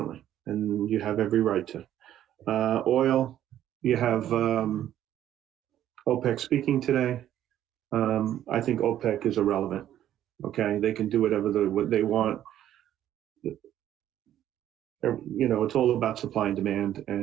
and you have every right to. Oil, you have OPEC speaking today. I think OPEC is irrelevant. Okay, they can do whatever they want. You know, it's all about supply and demand,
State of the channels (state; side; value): quieter; left; 11.7 dB